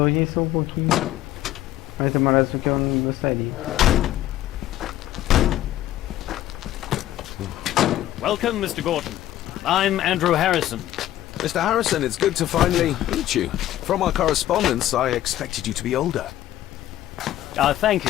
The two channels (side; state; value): right; quieter; 13.6 dB